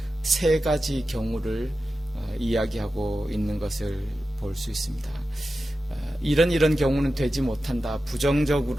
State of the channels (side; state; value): both; normal; correlation 0.92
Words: 세 가지 경우를 이야기하고 있는 것을 볼 수 있습니다. 이런 경우는 되지 못한다.